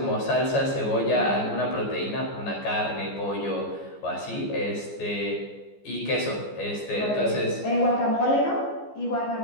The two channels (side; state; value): right; late; 14 ms